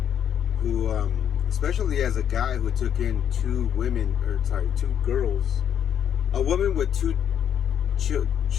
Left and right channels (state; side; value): quieter; right; 9.1 dB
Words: who, especially as a guy who took in two girls, a woman with two